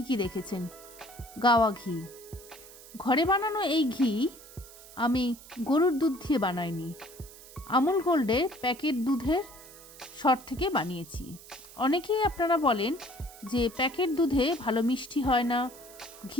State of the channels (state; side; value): noise; right; hiss, 19 dB below the sound